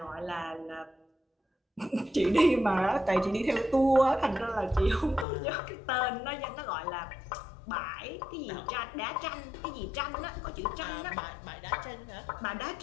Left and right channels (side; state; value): right; drops out; at 5.2 s